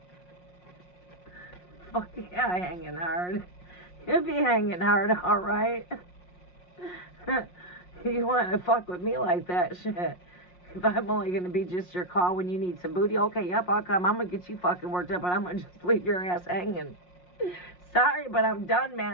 Fuck yeah, hanging hard. He'll be hanging hard, alright? You want to fuck with me like that, shit. If I'm only going to be just your call when you need some booty, okay, yep, I'll come. I'm going to get you fucking worked up, but I'm going to just leave your ass hanging. Sorry, but I'm done,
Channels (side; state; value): right; late; 5.6 ms